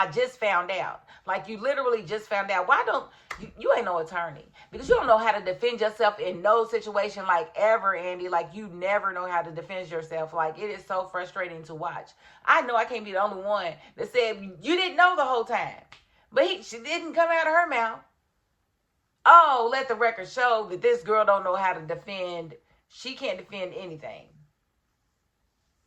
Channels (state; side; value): identical; both; correlation 1.00